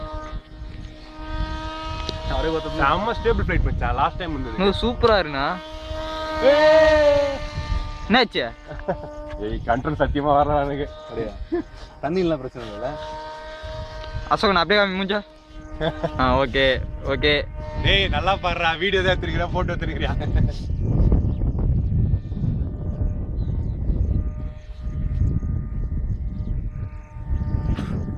செம்ம ஸ்டேபிள் ஃப்ளைட் மச்சான். லாஸ்ட் டைம் வந்தது சூப்பரா இருக்குண்ணா. என்னாச்சு? ஏய் கண்ட்ரோல் சத்தியமா வரல எனக்கு. அப்படியே தண்ணிலாம் பிரச்சனை இல்ல. அசோக் நான் அப்படியே மூஞ்சா. Okay okay. டேய் நல்லா பாடுறா. வீடியோ தான் எடுத்துக்கிறேன், போட்டோ எடுத்துக்கிறியா?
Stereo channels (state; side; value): identical; both; correlation 1.00